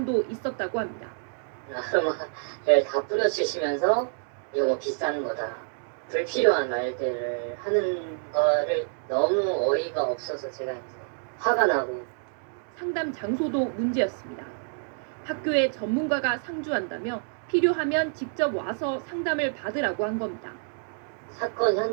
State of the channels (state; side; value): silent; left; digital silence